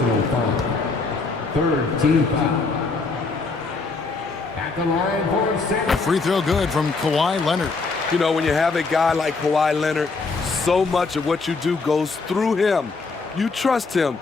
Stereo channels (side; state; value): right; quieter; 4.1 dB